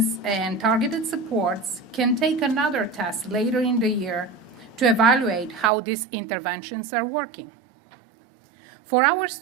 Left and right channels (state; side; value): drops out; left; at 5.7 s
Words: and targeted supports can take another test later in the year to evaluate how these interventions are working. For our